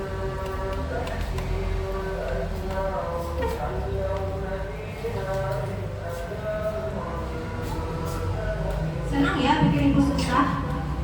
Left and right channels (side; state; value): both; identical; correlation 1.00